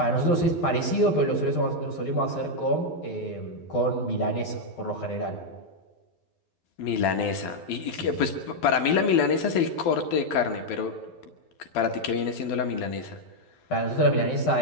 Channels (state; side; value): late; right; 12 ms